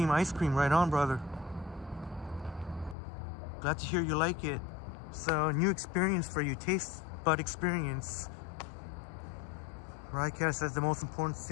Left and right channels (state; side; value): drops out; right; at 3.0 s